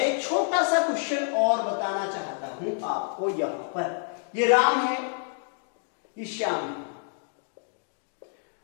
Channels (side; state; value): right; silent; 59 dB below the other